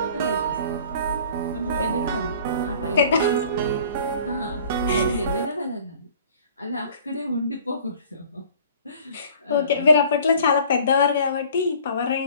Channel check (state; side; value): inverted; both; correlation -0.50